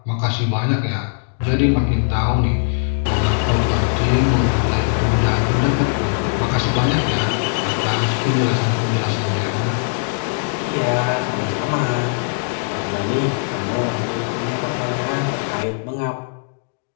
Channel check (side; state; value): right; silent; digital silence